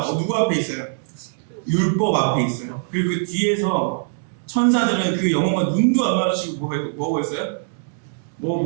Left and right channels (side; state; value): left; silent; digital silence